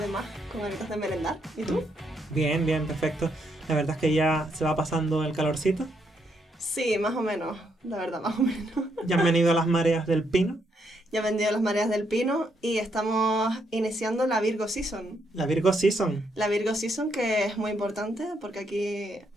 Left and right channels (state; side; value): normal; both; correlation 0.76